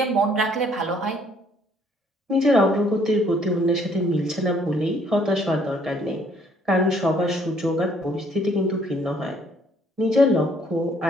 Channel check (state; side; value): normal; both; correlation 0.63